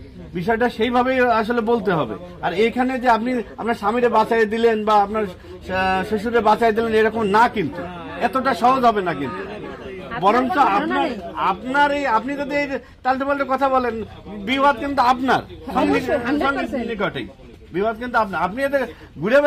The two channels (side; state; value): both; identical; correlation 1.00